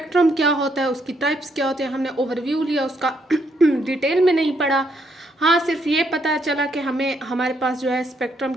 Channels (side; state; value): both; normal; correlation 0.74